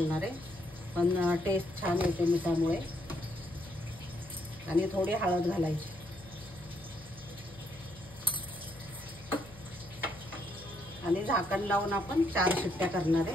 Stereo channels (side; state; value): left; noise; hum, 20 dB below the sound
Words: आहे, पण टेस्ट छान येते मिठामुळे। आणि थोडी हळद घालायची आणि झाकण लावून आपण 4 शिट्ट्या करणार